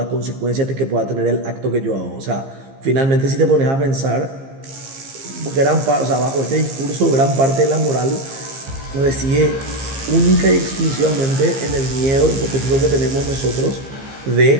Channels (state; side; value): late; left; 15 ms